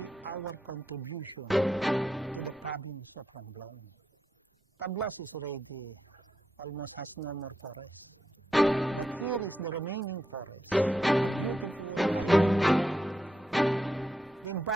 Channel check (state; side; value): normal; both; correlation 0.83